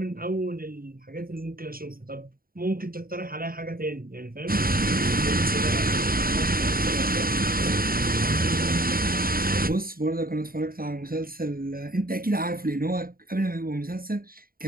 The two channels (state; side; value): late; left; 0.42 ms